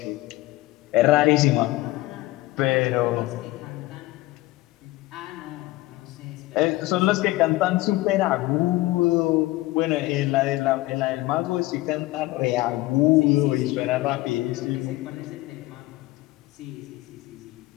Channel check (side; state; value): right; quieter; 18.4 dB